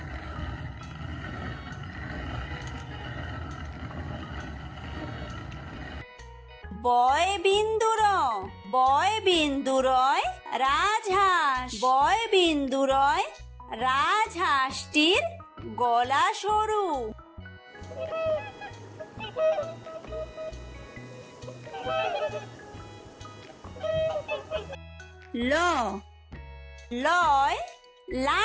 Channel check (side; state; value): both; identical; correlation 1.00